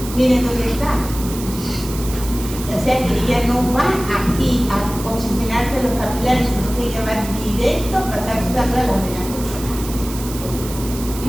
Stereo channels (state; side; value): noise; right; hiss, 12 dB below the sound